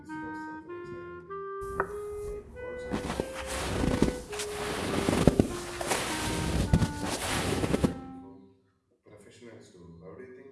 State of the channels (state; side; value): identical; both; correlation 1.00